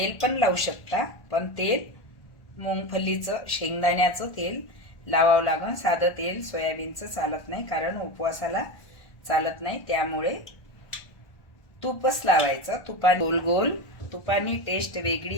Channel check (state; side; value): late; right; 1.4 ms